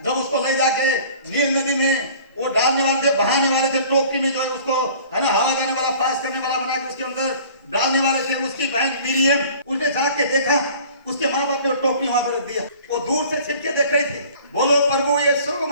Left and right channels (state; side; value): inverted; both; correlation -0.48